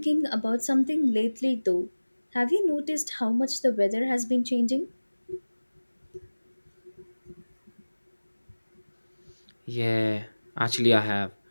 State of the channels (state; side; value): inverted; both; correlation -1.00